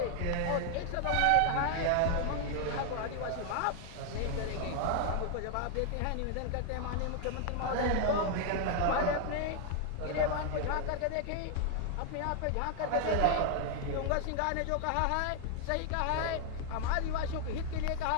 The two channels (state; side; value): different; both; correlation 0.00